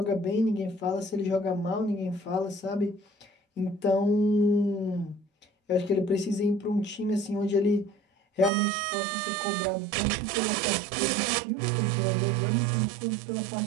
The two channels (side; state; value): left; drops out; at 8.5 s